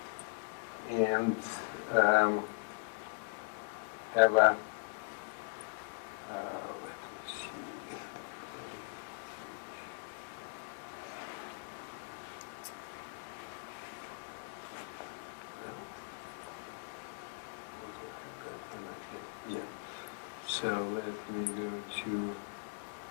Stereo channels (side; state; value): right; silent; digital silence